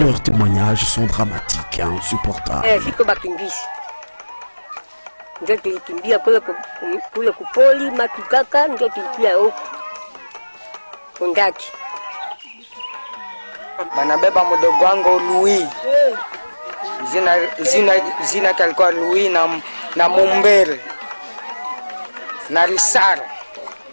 témoignages sont dramatiques et insupportables. Ndio tulikimbia kule kupoli Matukaka, ndio tulikia huko Kundaki. Banabeba mdogo wangu Louis. Zina kalikuwa Louis na Mumbere na Risara.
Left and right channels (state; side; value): inverted; both; correlation -1.00